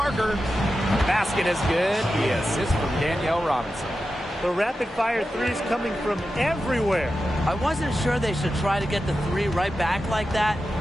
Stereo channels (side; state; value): both; normal; correlation 0.91